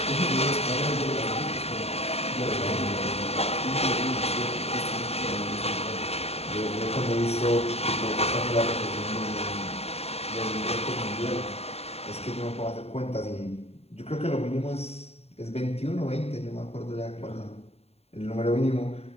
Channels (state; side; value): late; right; 0.30 ms